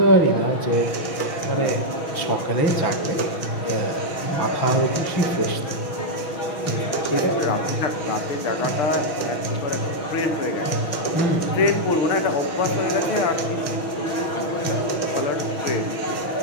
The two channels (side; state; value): right; late; 6.2 ms